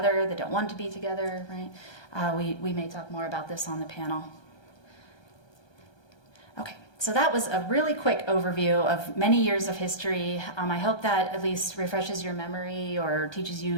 that don't want to be together, right? We may talk more about this on the panel. Okay, so that was a really quick overview of many years of history. I hope that at least refreshes your memory or teaches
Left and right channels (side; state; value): right; late; 1.2 ms